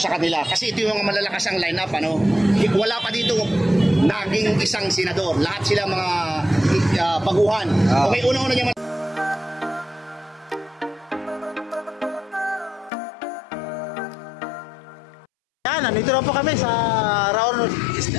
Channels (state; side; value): drops out; right; at 12.9 s